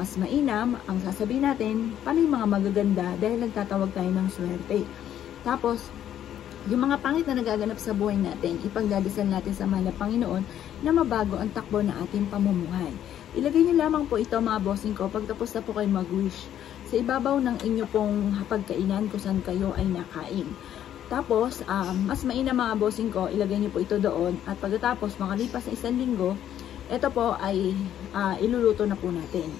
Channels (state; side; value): quieter; right; 10.7 dB